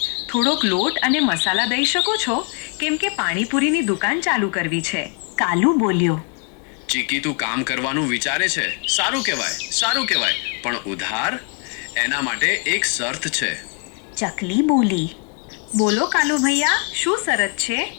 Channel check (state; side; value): quieter; right; 38.6 dB